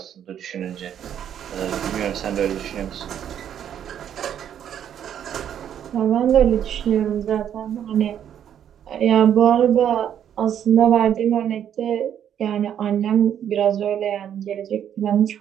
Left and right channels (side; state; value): left; quieter; 9.6 dB